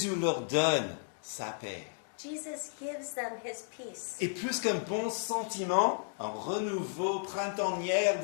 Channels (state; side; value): silent; right; digital silence